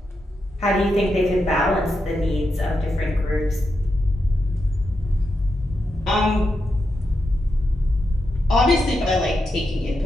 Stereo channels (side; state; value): both; normal; correlation 0.86